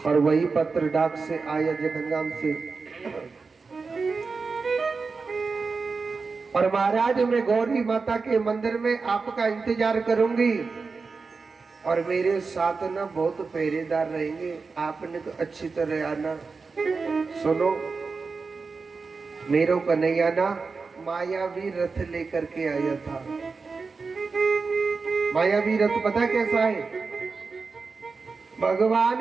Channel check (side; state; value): left; quieter; 4.5 dB